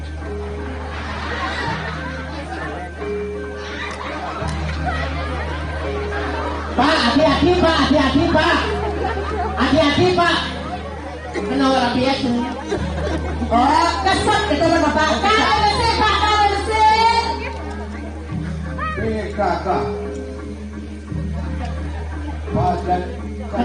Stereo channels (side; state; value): both; identical; correlation 1.00